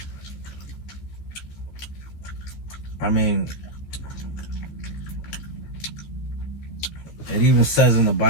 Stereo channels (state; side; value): late; right; 14 ms